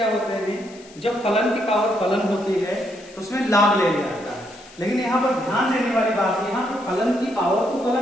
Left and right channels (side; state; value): left; noise; hiss, 22 dB below the sound